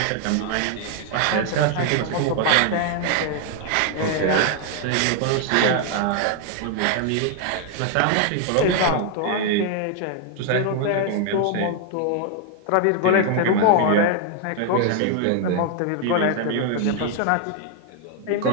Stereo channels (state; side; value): different; both; correlation 0.00